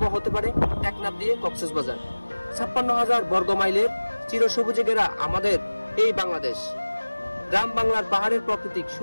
হতে পারে টেকনাফ দিয়ে কক্সবাজার। ৫৬,০০০ বর্গ মাইলের চিরসবুজে ঘেরা আমাদের এই বাংলাদেশ। গ্রাম বাংলার পাহাড়ের প্রাকৃতিক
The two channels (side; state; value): both; inverted; correlation -1.00